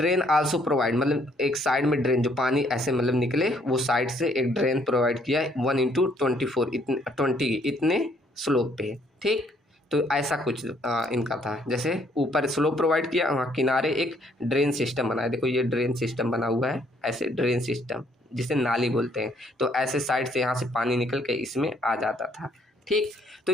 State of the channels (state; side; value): normal; both; correlation 0.66